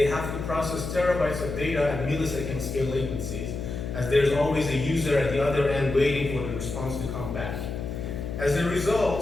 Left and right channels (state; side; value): noise; left; hum, 6 dB below the sound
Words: have to process terabytes of data at millisecond scale latencies, as there's always a user at the other end waiting for the response to come back. As a